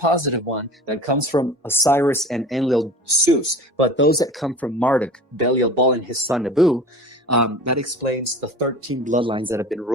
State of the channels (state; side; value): normal; both; correlation 0.39